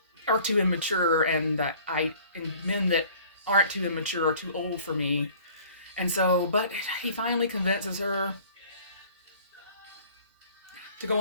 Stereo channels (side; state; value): both; inverted; correlation -0.51